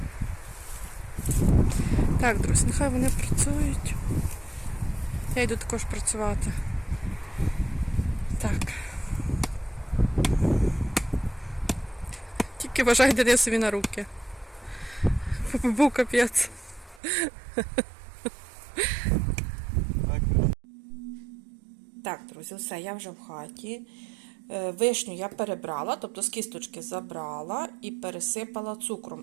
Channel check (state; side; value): drops out; left; at 17.0 s